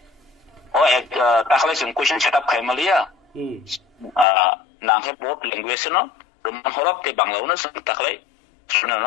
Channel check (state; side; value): drops out; right; at 4.2 s